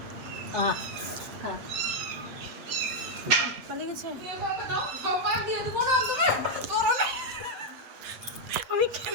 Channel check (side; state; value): left; late; 8.2 ms